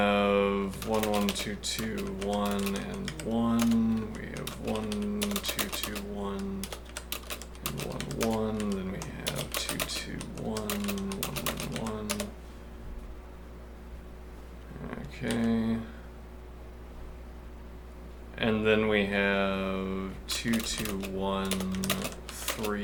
1, 1, 2, 2, 1, and 1. We have 1, 2, 2, 1, and 1, 1. Then we have 2, 2, 1, 1, 1, 1. Okay. And then we have 2, 2, 1,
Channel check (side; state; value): both; identical; correlation 1.00